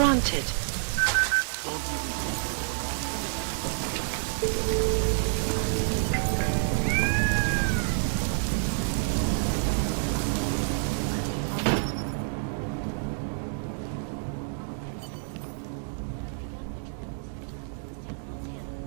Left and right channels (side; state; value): left; silent; digital silence